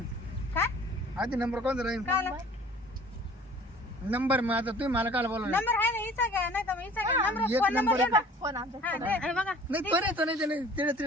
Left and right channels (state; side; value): normal; both; correlation 0.49